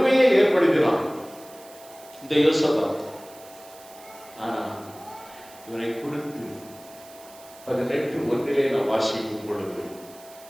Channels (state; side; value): noise; right; hiss, 21 dB below the sound